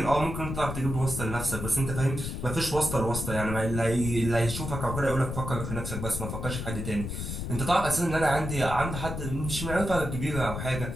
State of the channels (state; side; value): noise; left; rumble, 5 dB below the sound